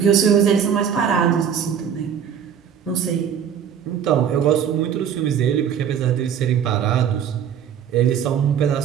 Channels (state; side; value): quieter; left; 8.3 dB